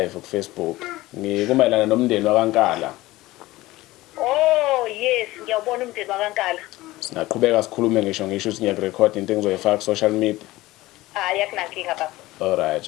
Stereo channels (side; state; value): right; quieter; 18.2 dB